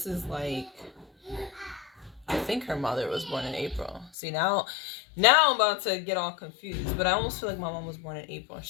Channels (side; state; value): right; drops out; at 4.1 s